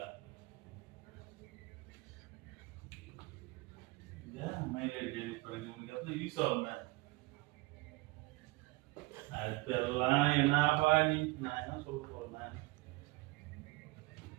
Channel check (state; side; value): quieter; left; 22.7 dB